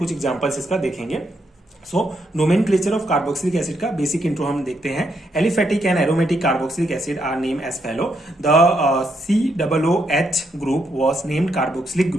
एग्जांपल्स इसका देखेंगे। So nomenclature of carboxylic acid का बेसिक इंट्रो हम देखते हैं। Aliphatic and aromatic carboxylic acid are named as follow. The COOH group was named carboxylic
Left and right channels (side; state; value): both; normal; correlation 0.78